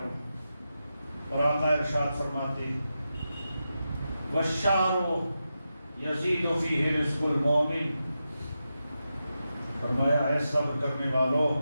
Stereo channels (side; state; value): both; inverted; correlation -0.89